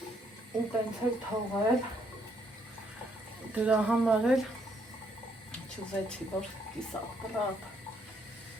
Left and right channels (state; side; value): normal; both; correlation 0.71